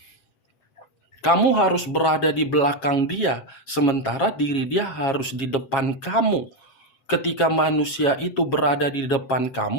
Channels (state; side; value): late; right; 7.4 ms